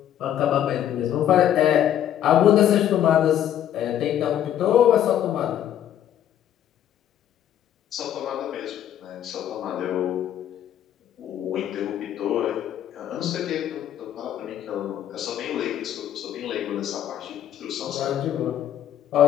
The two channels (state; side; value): quieter; right; 10.8 dB